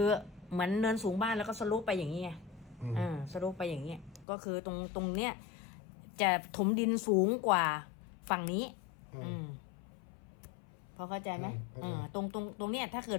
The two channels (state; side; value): drops out; right; at 4.2 s